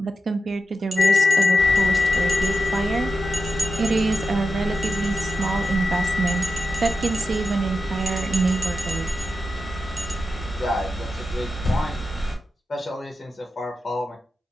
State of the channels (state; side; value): normal; both; correlation 0.89